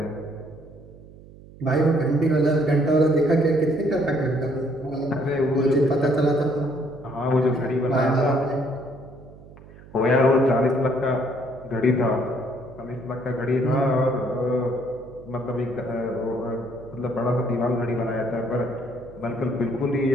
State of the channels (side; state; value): right; noise; hum, 20 dB below the sound